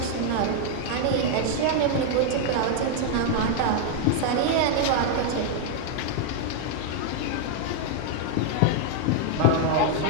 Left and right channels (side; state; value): both; different; correlation 0.00